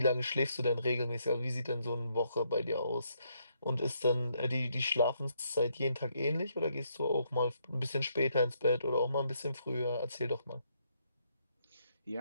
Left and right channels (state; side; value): inverted; both; correlation -0.74